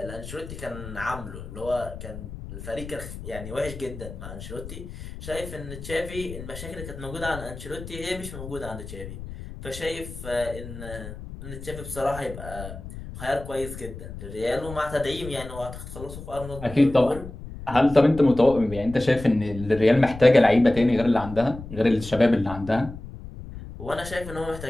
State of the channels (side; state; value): left; noise; rumble, 12 dB below the sound